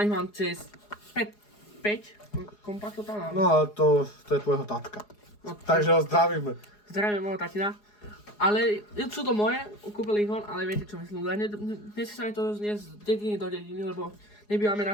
mám cez 5 kompaktov tam mám. No ale to je tvojho tatka. No, Takže ho zdravíme. Zdravím môjho tatina. Ale sú to moje, kúpili ich on, ale viete čo myslím, ľudia. Nechce sa mi to zniesť z dediny do dediny, lebo nebývame na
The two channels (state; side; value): late; right; 4.8 ms